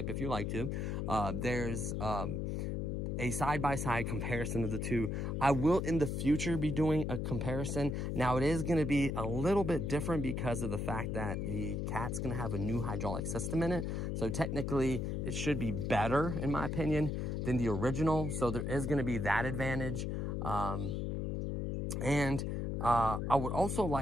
if you like to. There's a side-by-side comparison of the two. I will in the future be doing a comparison. Now it is going to be a little bit different because of the fact that the Cat's going to have a new hydraulic system in it. So technically it should be better, in my opinion, than the original. So there is going to be that advantage. I would also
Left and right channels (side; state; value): left; noise; hum, 1 dB below the sound